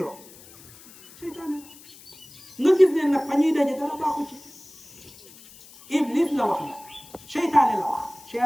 seytaane nga gis ne nag fa ñuy daje dara baaxu ci Iblis la wax nag seytaane la wax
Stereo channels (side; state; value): left; noise; hiss, 22 dB below the sound